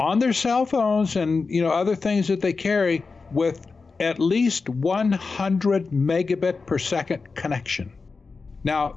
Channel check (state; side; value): quieter; right; 4.4 dB